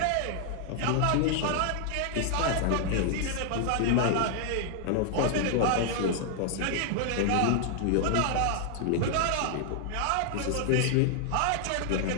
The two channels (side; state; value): both; different; correlation 0.00